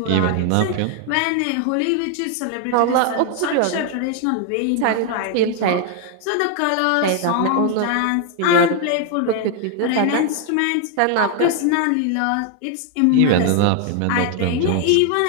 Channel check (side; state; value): both; different; correlation 0.00